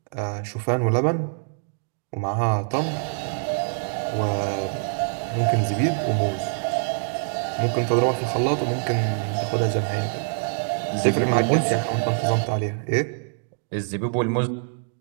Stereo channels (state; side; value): silent; left; digital silence